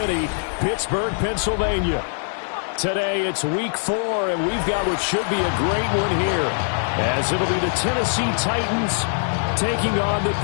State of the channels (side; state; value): right; silent; digital silence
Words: Pittsburgh, Pennsylvania. Today it's week 4, and we've got what should be a great one here, as it'll be the Tennessee Titans taking on the